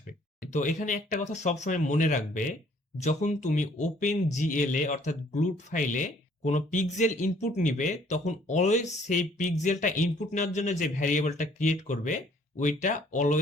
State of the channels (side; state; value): both; normal; correlation 0.60